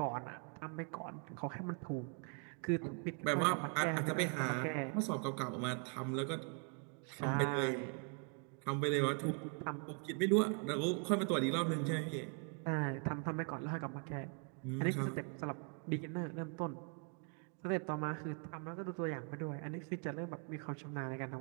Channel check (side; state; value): left; quieter; 38.4 dB